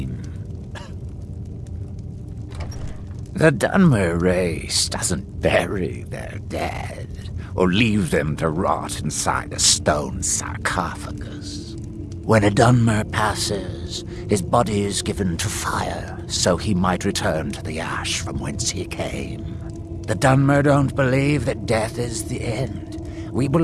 The Dunmer race doesn't bury their dead, or leave them to rot inside a stone sarcophagus. When a Dunmer passes, his body is given to fire, so he might return to the ash from whence he came. The Dunmer don't believe that death is the end. We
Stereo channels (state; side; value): identical; both; correlation 1.00